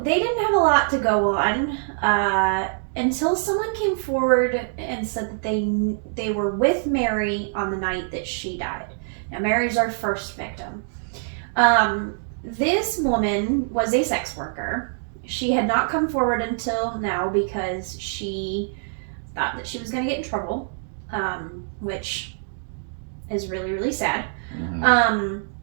they didn't have a lot to go on until someone came forward and said that they were with Mary on the night that she died. Now Mary's our first victim. This woman was a sex worker. She had not come forward until now because she thought that she was going to get in trouble, which is really, really sad. Mm-hmm.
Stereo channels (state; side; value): silent; left; digital silence